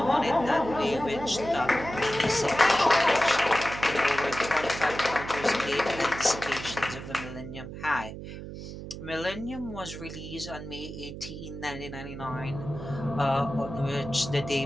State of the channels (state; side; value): noise; right; hum, 10 dB below the sound